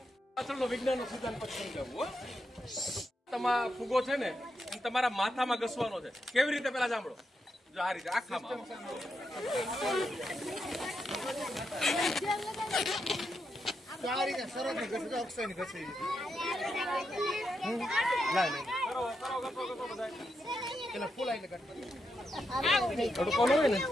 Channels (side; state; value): both; normal; correlation 0.84